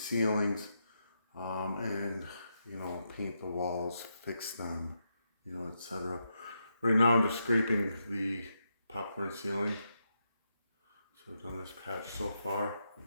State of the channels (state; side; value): inverted; both; correlation -0.83